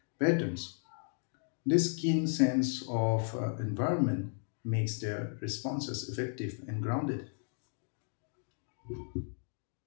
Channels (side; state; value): right; silent; 55 dB below the other